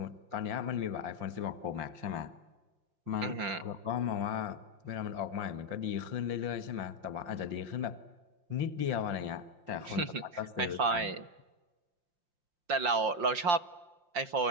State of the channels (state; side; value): late; left; 5.7 ms